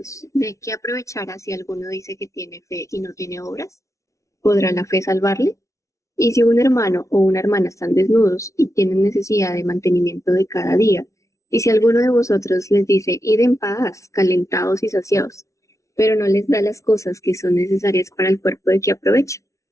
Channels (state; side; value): late; right; 0.15 ms